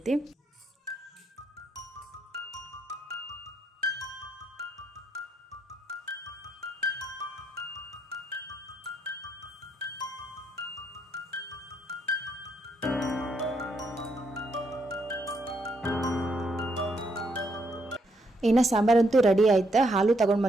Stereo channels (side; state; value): both; normal; correlation 0.75